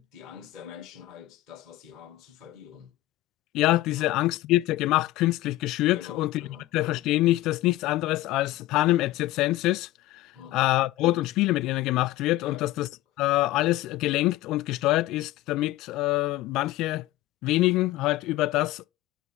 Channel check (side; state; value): right; quieter; 16.8 dB